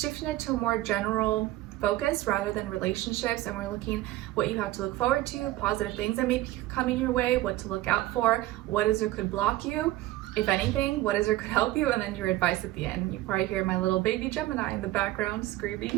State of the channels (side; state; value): left; quieter; 16.3 dB